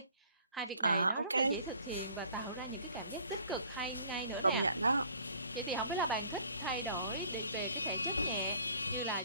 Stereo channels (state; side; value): inverted; both; correlation -0.55